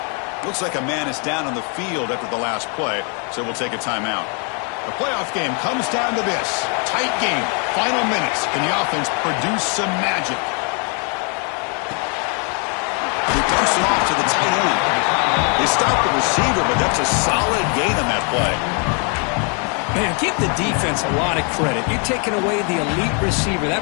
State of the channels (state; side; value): quieter; right; 37.7 dB